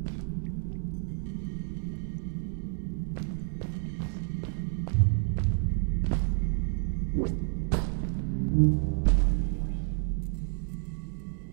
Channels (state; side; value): silent; left; 58 dB below the other